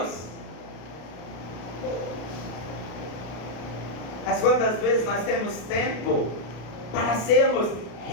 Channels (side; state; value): right; late; 33 ms